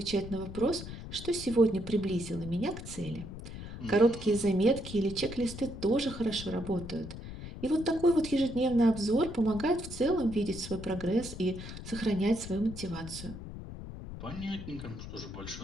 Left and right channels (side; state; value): left; noise; rumble, 10 dB below the sound